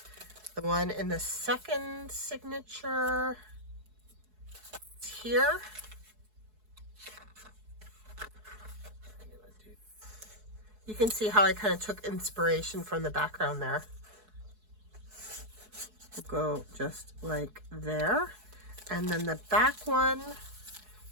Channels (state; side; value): late; left; 4.7 ms